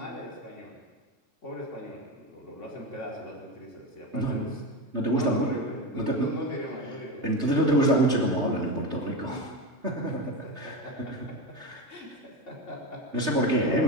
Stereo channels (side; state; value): left; late; 3.3 ms